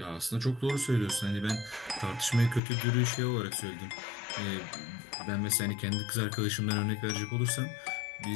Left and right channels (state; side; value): drops out; right; at 2.6 s